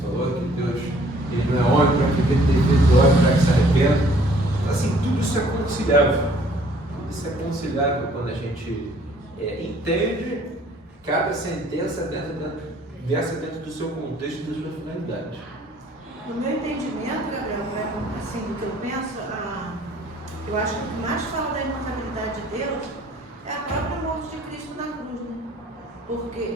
falou, que Deus ele não é homem para que ele tenha feito homem para que se arrependa. Então, assim, tudo isso é conciliável. Tudo isso é conciliável quando a gente entende cada sentença dentro do seu contexto e da sua finalidade. No meu entendimento, Gabriel, assim, do que eu penso, eu acho que o que mais fala da imutabilidade de Deus é a própria morte de Cristo na cruz, né?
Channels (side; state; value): both; normal; correlation 0.58